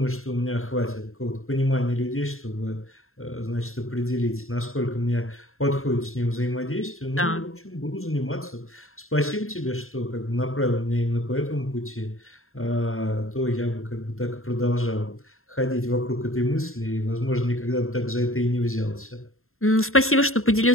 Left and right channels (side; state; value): right; late; 0.61 ms